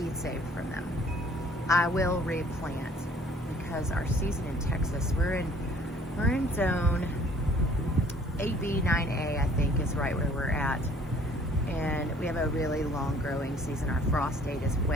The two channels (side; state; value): both; normal; correlation 0.56